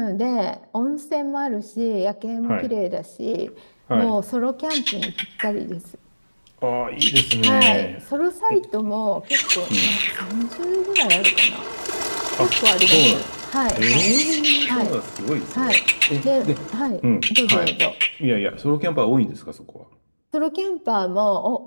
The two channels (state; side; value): inverted; both; correlation -1.00